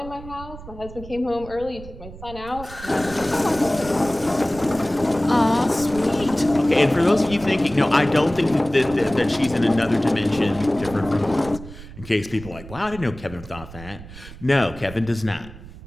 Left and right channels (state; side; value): noise; right; rumble, 15 dB below the sound